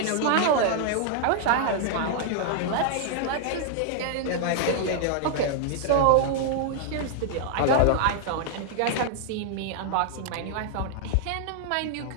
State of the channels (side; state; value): both; different; correlation -0.01